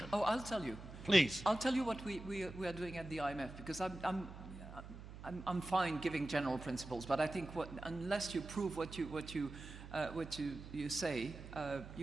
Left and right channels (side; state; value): right; noise; hum, 13 dB below the sound